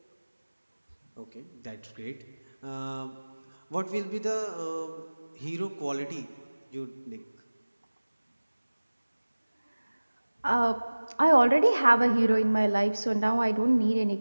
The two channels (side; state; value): both; inverted; correlation -1.00